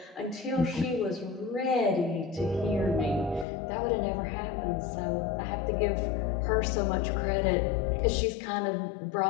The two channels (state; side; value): drops out; right; at 3.5 s